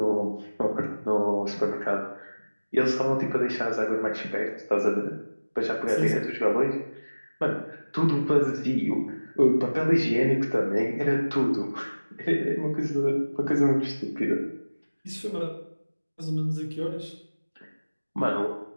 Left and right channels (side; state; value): both; inverted; correlation -1.00